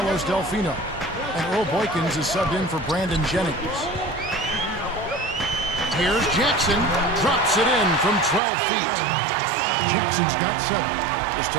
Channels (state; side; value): drops out; left; at 8.4 s